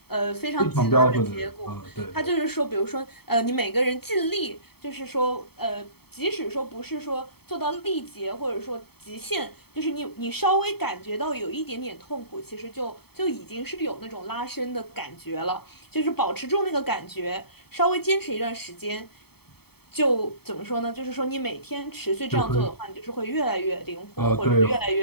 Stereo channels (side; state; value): right; late; 0.96 ms